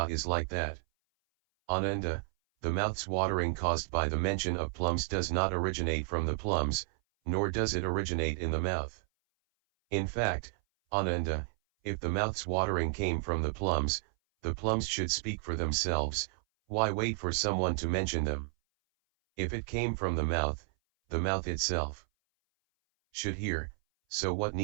is like that. Ananda, the mouth's watering caused by the mention of plums does not originate from the plums, nor does it originate in the mouth. In fact, Ananda, if the mouth's watering came from the plums should speak for themselves, why wait for someone to mention them? If it came from the mouth itself should hear, so what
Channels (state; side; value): silent; left; 56 dB below the other